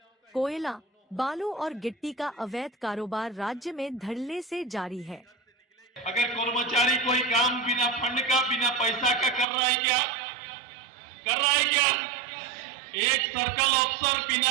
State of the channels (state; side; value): drops out; left; at 9.5 s